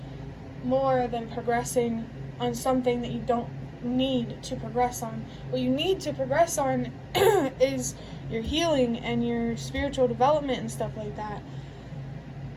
more than progressing on something that you don't need to progress on. What you need to progress on is your healing and your spiritual development and stuff like that.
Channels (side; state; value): both; identical; correlation 1.00